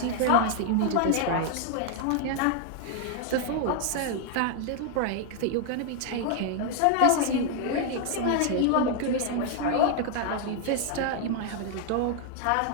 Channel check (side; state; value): both; different; correlation 0.00